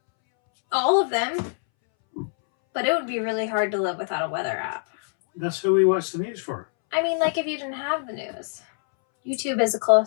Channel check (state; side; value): silent; right; 63 dB below the other